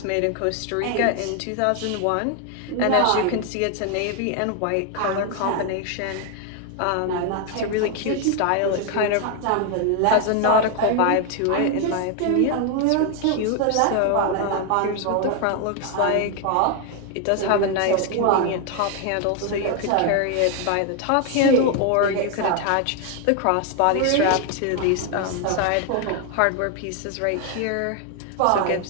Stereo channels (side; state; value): both; different; correlation 0.01